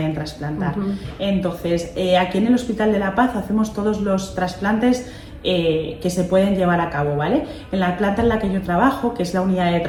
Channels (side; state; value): both; identical; correlation 1.00